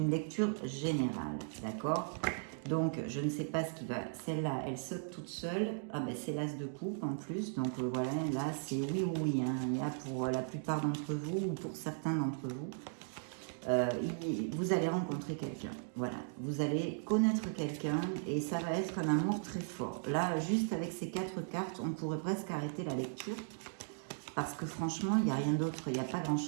lecture générale, d'accord? Donc, je ne sais pas ce qui va... Celle-là, elle saute toute seule. Ah ben, c'est l'as de coupe en plus. Donc, voilà, là, c'est oui ou oui. Hein. Il y a pour la plupart d'entre vous ou pour certains d'entre vous. Vous allez rencontrer quelqu'un. Voilà. Vous allez connaître quelqu'un et ça va être un amour très fort. Là, juste avec ces 4 cartes, on pourrait presque arrêter la lecture. Parce que franchement, il n'y a rien d'autre, il n'y a pas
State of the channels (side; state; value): left; silent; digital silence